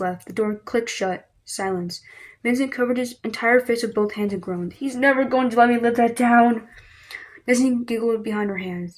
The door clicked shut. Silence. Vincent covered his entire face with both hands and groaned. "He's never going to let me live that down." Destinee giggled behind her hands.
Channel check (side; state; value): both; identical; correlation 1.00